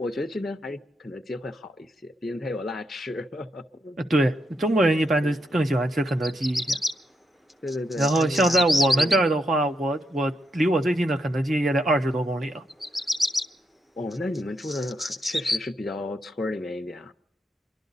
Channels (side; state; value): both; normal; correlation 0.81